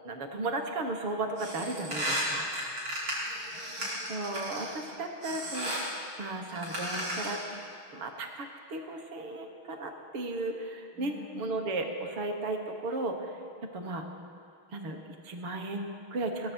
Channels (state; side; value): late; left; 6.4 ms